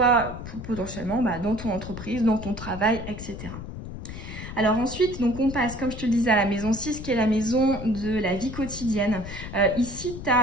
potentiellement dans ton entreprise, dans ton travail, etc. Alors ensuite, donc on passe, comme je te le disais, à la maison 6, qui est la maison de la vie quotidienne. Ici, tu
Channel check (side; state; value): left; noise; rumble, 10 dB below the sound